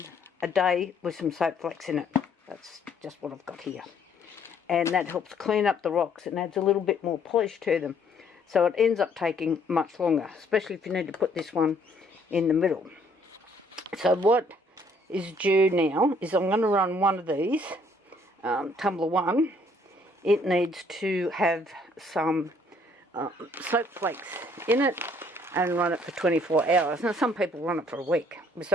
a day with some soap flakes in it. That's just what I've got here. And that helps clean up the rocks and adds a little bit more polish to them. So it ends up taking much longer, especially if you need to put this one in the middle. So what is due now is I'm going to run one of these tumbler 1, it needs to have some soap flakes in it and run it for 24 hours. Now some people run it for a week with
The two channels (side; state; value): both; normal; correlation 0.64